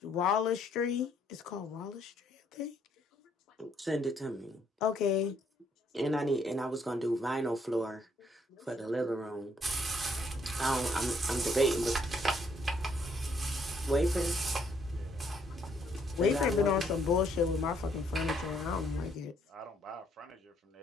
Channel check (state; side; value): normal; both; correlation 0.69